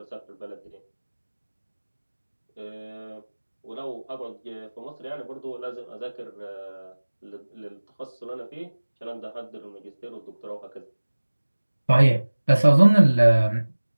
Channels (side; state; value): both; inverted; correlation -1.00